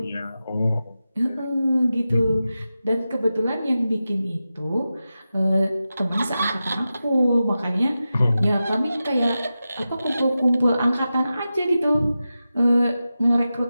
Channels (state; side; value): inverted; both; correlation -0.92